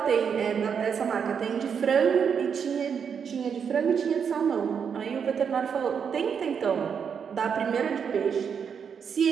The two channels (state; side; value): quieter; left; 7.0 dB